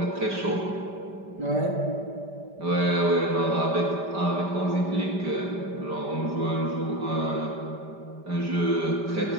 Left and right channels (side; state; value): left; late; 5.1 ms